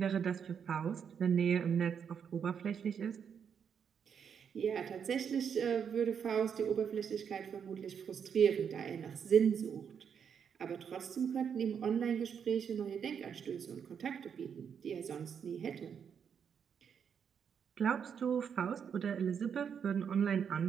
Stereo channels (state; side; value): quieter; left; 7.4 dB